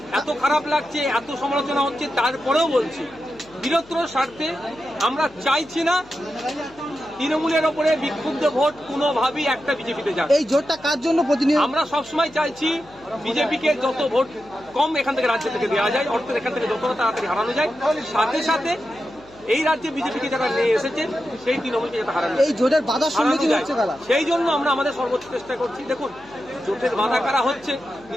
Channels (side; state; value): left; noise; hum, 25 dB below the sound